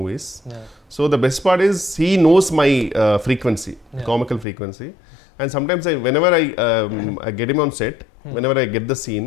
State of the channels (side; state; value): right; drops out; at 4.5 s